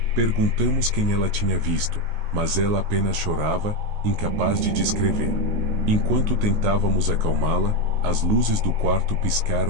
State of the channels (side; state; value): left; late; 19 ms